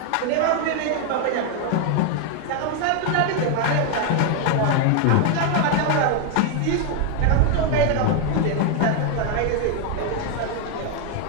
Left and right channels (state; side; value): different; both; correlation 0.01